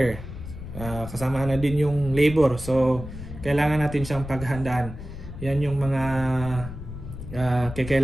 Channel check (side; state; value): left; noise; rumble, 11 dB below the sound